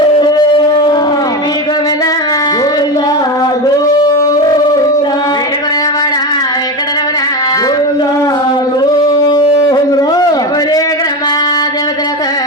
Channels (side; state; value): both; normal; correlation 0.19